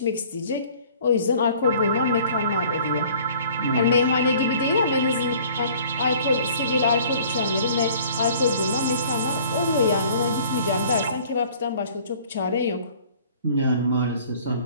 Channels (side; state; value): both; inverted; correlation -0.52